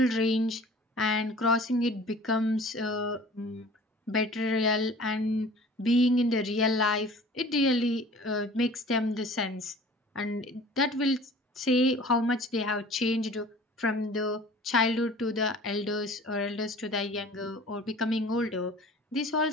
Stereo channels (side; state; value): both; normal; correlation 0.46